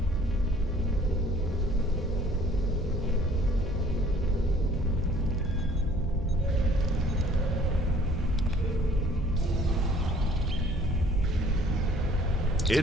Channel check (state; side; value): normal; both; correlation 0.55